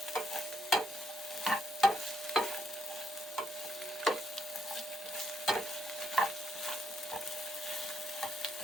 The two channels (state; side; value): normal; both; correlation 0.75